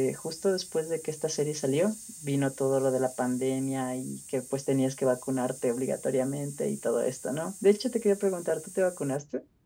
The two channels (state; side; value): identical; both; correlation 1.00